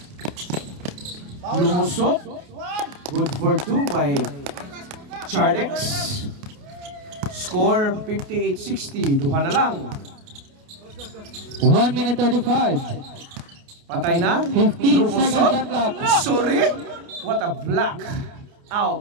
Lumusot. Good for 2 by Chardex. Score 58-60. Duha na lang. 1 minute 35. Patay na. 15 seconds shot clock. Sorry. What a block.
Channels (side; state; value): left; late; 28 ms